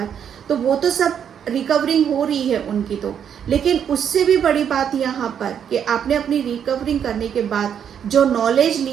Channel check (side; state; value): left; quieter; 8.4 dB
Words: तो वो तो सब रिकवरिंग हो रही है उनकी तो। लेकिन उससे भी बड़ी बात यहाँ पर कि आपने अपनी रिकवरिंग करने के बाद जो नॉलेज